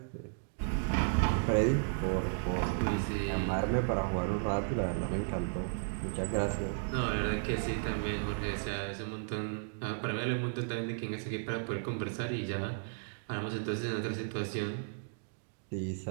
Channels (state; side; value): silent; left; digital silence